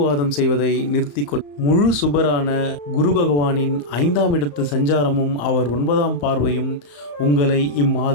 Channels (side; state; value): right; late; 34 ms